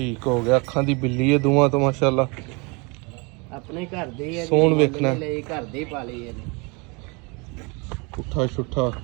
हो गया ਅੱਖਾਂ ਦੀ ਬਿੱਲੀ ਹੈ ਦੋਵਾਂ ਤੋਂ ਮਾਸ਼ਾਅੱਲਾ ਆਪਣੇ ਘਰ ਦੀ ਹੈ ਸੋਹਣ ਵੇਖਣਾ ਲਈ ਘਰ ਦੀ ਪਾਲੀ ਹੈ ਜੀ ਪੁੱਠਾ ਛੁੱਠਾ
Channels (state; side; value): quieter; left; 29.7 dB